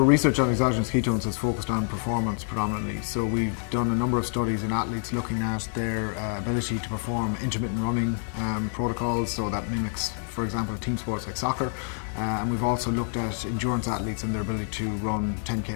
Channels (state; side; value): silent; right; 60 dB below the other